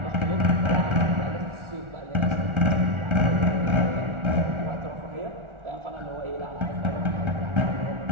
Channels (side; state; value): left; late; 1.4 ms